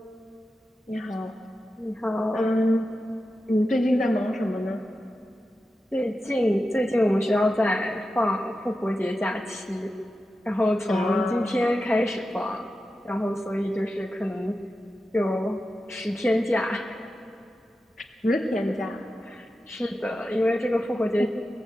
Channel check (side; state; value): both; normal; correlation 0.92